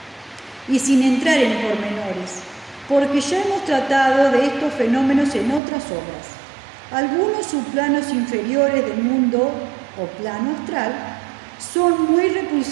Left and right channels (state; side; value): drops out; left; at 5.6 s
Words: y sin entrar en pormenores, porque ya hemos tratado de estos fenómenos en otras obras. Algunos subplanos inferiores del mundo o plano astral son muy